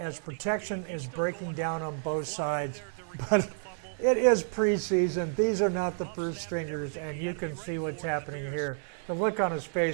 protection is breaking down on both sides. But it is preseason. These are not the first stringers, and you can see what's happening here. The look on his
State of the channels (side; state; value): left; silent; 58 dB below the other